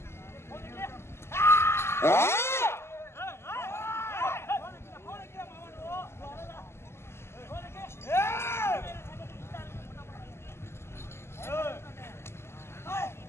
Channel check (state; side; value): late; right; 0.12 ms